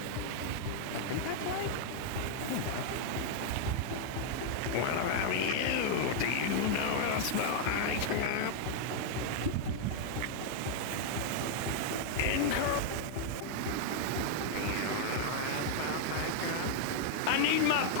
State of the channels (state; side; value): different; both; correlation -0.01